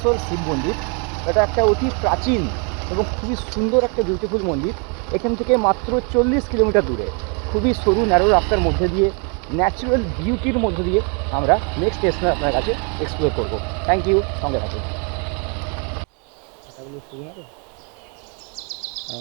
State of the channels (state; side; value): quieter; left; 37.0 dB